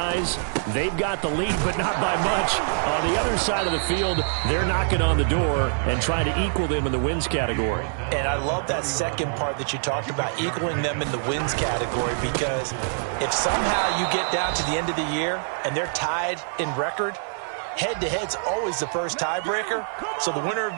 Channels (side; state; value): left; silent; 62 dB below the other